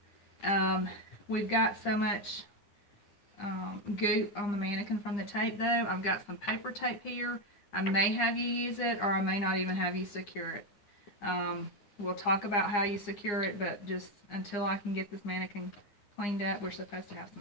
We've got so much goop on the mannequin from the tape, though. I've got some paper tape here. I may have you use it, or I may not even have you secure it. We'll talk about how you secure it, but just until I can get this mannequin cleaned up, we're supposed to have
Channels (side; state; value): right; late; 9.8 ms